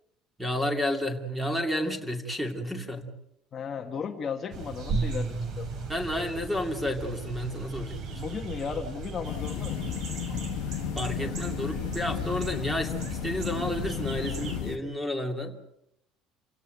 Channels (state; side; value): normal; both; correlation 0.63